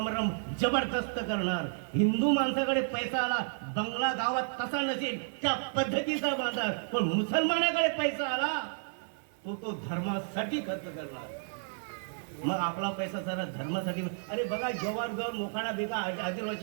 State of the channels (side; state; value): left; silent; 57 dB below the other